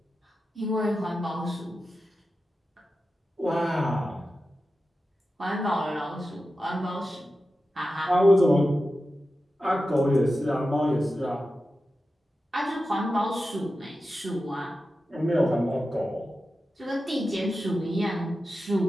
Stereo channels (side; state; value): both; normal; correlation 0.92